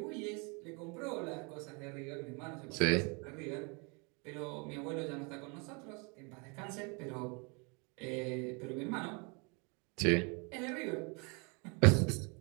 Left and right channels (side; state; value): left; quieter; 32.4 dB